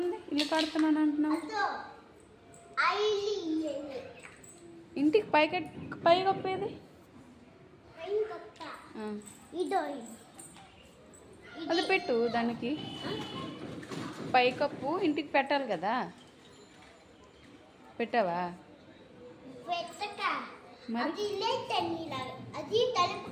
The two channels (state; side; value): identical; both; correlation 1.00